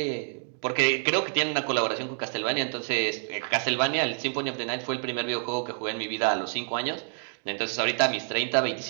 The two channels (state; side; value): silent; left; 59 dB below the other